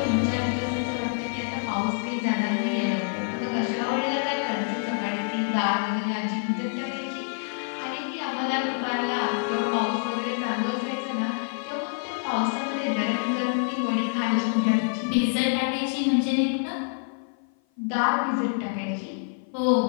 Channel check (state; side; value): silent; right; 55 dB below the other